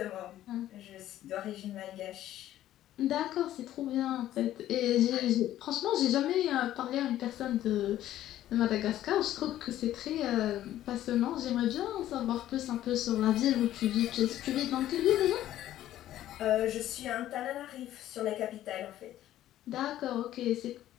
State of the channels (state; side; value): quieter; right; 13.1 dB